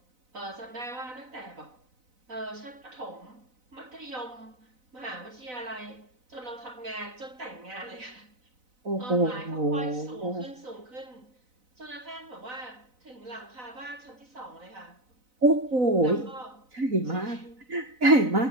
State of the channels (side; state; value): left; late; 4.0 ms